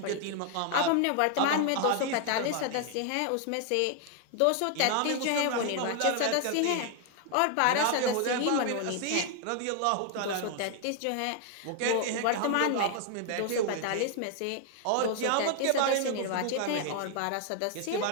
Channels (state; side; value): different; both; correlation 0.00